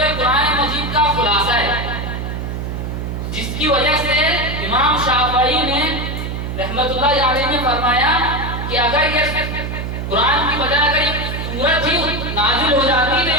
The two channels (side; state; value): right; noise; hum, 5 dB below the sound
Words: قرآن مجید کا خلاصہ ہے، جس کی وجہ سے امام شافعی نے رحمت اللہ علیہ نے فرمایا کہ اگر یہ قرآن کی بجائے اگر یہ سورت ہی نازل ہو جاتی تو